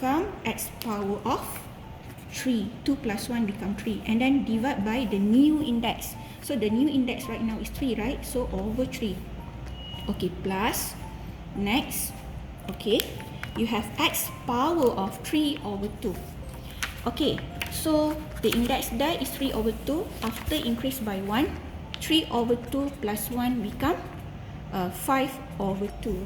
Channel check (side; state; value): both; identical; correlation 1.00